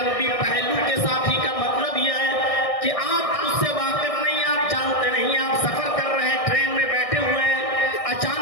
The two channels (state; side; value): late; right; 1.6 ms